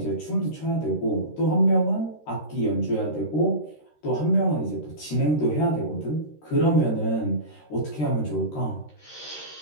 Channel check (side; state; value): right; late; 13 ms